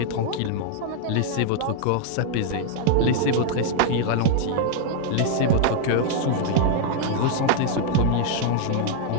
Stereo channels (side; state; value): both; different; correlation 0.00